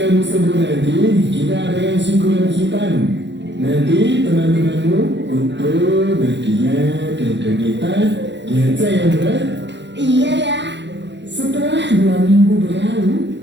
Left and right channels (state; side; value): late; left; 0.52 ms